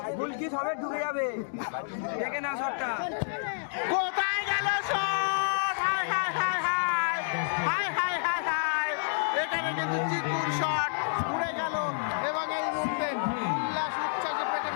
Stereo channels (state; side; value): silent; right; digital silence